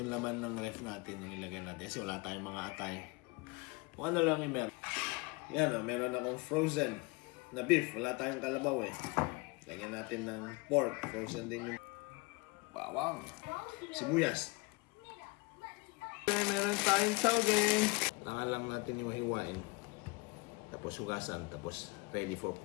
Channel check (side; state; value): right; quieter; 26.9 dB